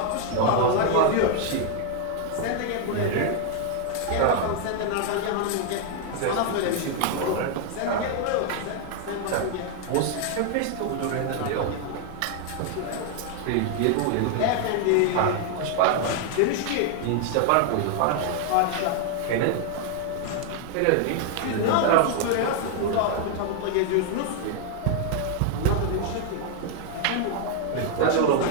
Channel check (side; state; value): both; different; correlation 0.00